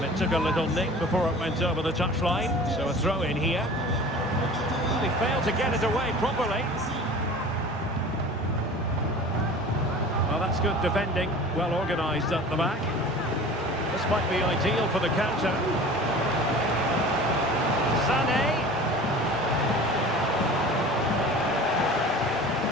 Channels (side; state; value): both; normal; correlation 0.40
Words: it took a little nick before it went over the touchline. So a throw in here. They failed to get it away properly. Well, that's good defending, well organised at the back. This might be ideal for the counter. Sané.